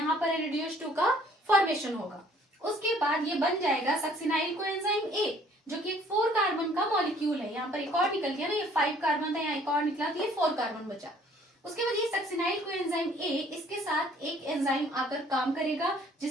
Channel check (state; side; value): normal; both; correlation 0.58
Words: पर NADH2 का फॉर्मेशन होगा। उसके बाद ये बन जाएगा सक्सिनाइल कोएंजाइम A, जो कि एक 4 कार्बन का मॉलिक्यूल है। यहाँ पर एक और निकल गया ना, ये 5 कार्बन था, यहाँ एक और निकला तो ये 4 कार्बन बचा। उसके बाद ये सक्सिनाइल कोएंजाइम A, इसके साथ एक एंजाइम आकर काम करेगा